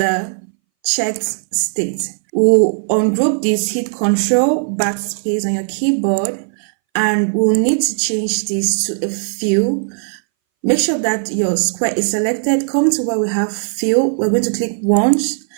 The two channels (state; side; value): silent; left; 63 dB below the other